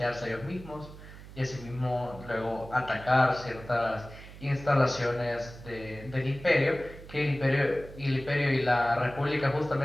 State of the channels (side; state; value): right; noise; hum, 16 dB below the sound